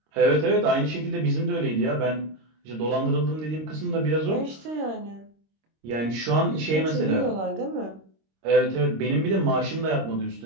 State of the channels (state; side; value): late; left; 26 ms